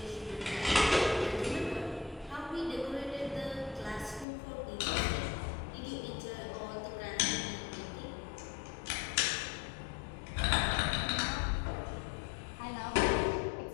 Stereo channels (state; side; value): drops out; right; at 4.2 s